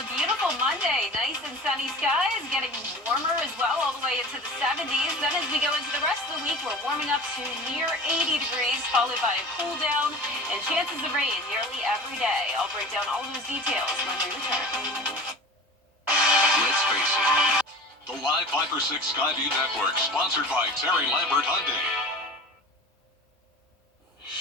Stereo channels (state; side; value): normal; both; correlation 0.37